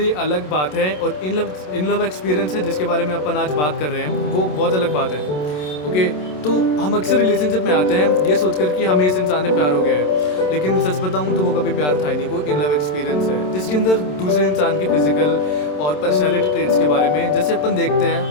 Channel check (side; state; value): right; late; 27 ms